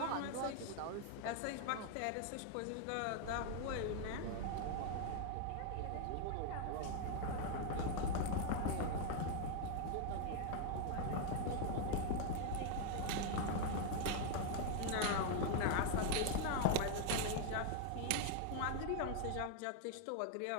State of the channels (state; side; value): different; both; correlation 0.00